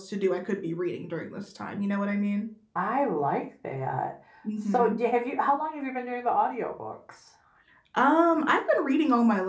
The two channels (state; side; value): identical; both; correlation 1.00